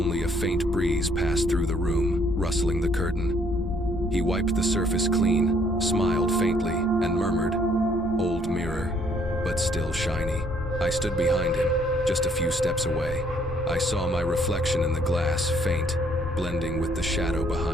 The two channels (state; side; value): normal; both; correlation 0.65